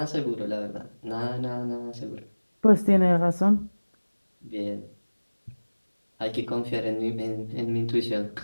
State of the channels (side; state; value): both; inverted; correlation -1.00